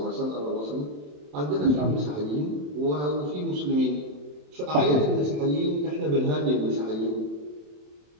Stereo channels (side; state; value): left; late; 27 ms